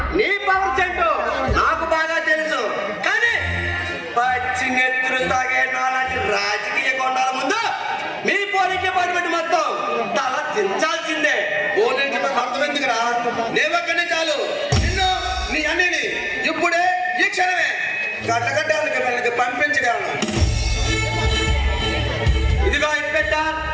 నీ పవర్ చెంటు నాకు బాగా తెలుసు. కానీ పచ్చి నెత్తులు తాగే నాలాంటి రాజకీయ కొండాల ముందు మీ పోలీస్ డిపార్ట్మెంట్ మొత్తం తల దించాల్సిందే. పోలీసు అర్థమెందుకురా? నేవక్కనే చాలు నిన్ను నీ అన్నిని ఇప్పుడే ఈ క్షణమే గడ్డగడ్డాలకి మనకి పంపించగలను. ఇదిగో ఇన్స్పెక్టర్,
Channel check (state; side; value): identical; both; correlation 1.00